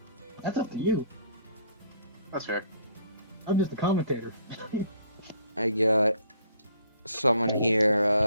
That's up to you. That's fair. I'm just a commentator. I got someone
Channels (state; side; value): inverted; both; correlation -0.60